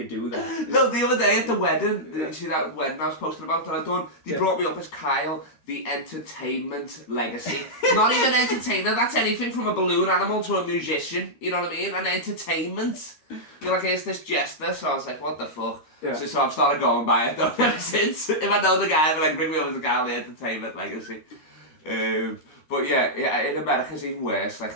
do that. No, the other day at the wedding, you see that wedding I was posting about that I'd done? They brought me up as Kyle the Entertainment Legacy. Not even entertainer, that's anything from a balloon animal to a musician, you know what I mean? An entertainment. You're like, it's this jester, so I was like, what the fuck? Yeah. So I've started going by it though ever since. If I know the guy, I'll be like, bring me over to Galley Entertainment Legacy. But yeah, in America it's even worse. Like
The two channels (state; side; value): late; right; 13 ms